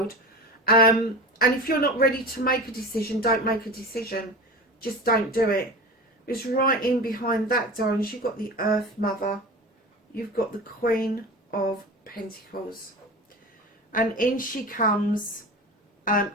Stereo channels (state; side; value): normal; both; correlation 0.31